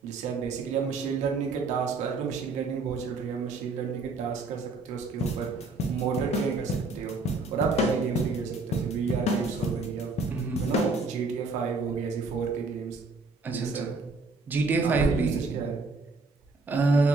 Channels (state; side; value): quieter; left; 3.5 dB